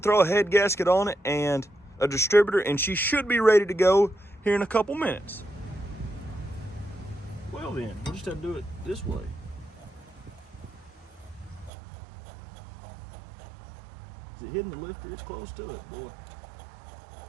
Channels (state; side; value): drops out; left; at 11.7 s